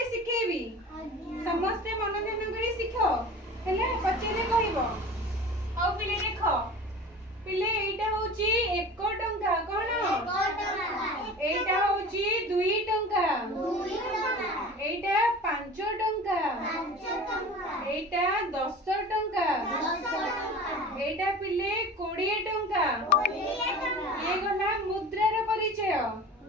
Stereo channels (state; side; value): normal; both; correlation 0.37